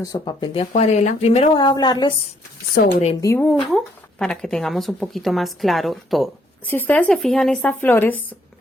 papel de acuarela. Primero voy a hablarles sobre el dibujo para que tengamos un poquito más claro todo. Si ustedes se fijan, estas flores,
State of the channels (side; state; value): both; normal; correlation 0.68